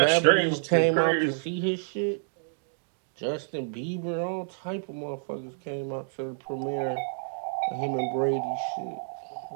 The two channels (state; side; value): silent; left; digital silence